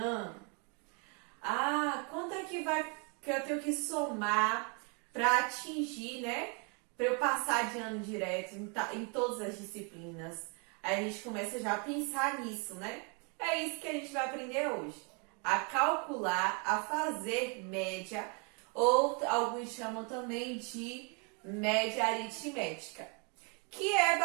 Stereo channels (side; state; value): left; quieter; 35.4 dB